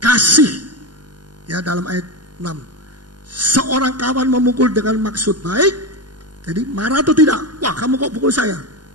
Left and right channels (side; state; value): left; late; 0.70 ms